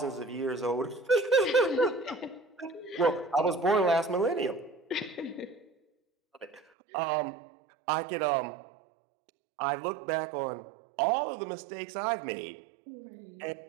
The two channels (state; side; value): drops out; left; at 6.6 s